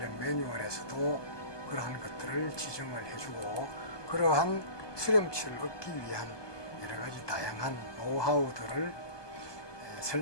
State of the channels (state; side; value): late; right; 1.2 ms